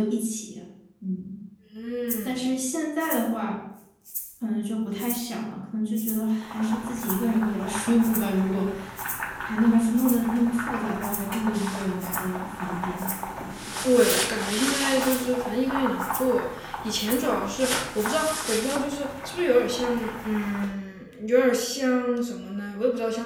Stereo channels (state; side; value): identical; both; correlation 1.00